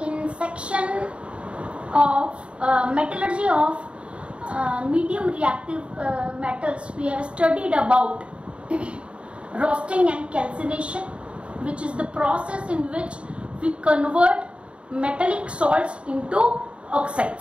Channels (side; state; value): left; late; 0.058 ms